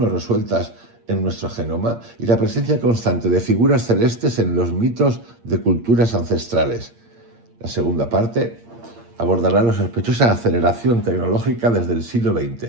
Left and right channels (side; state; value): left; late; 8.6 ms